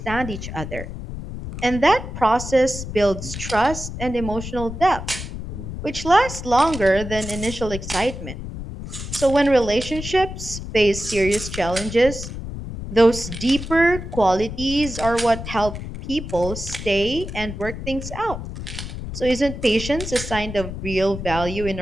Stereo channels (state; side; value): noise; left; rumble, 8 dB below the sound